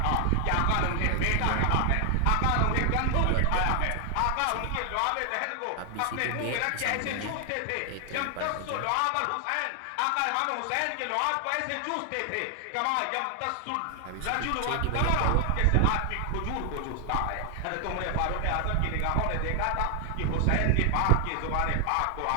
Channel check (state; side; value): different; both; correlation 0.00